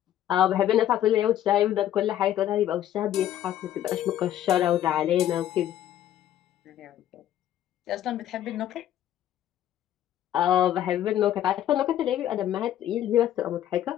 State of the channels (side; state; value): right; quieter; 11.8 dB